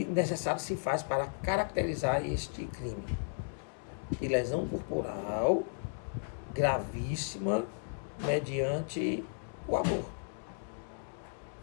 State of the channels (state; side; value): silent; right; digital silence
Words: necessário se faz para caracterizar este crime. De lesão corporal gravíssima mediante o aborto.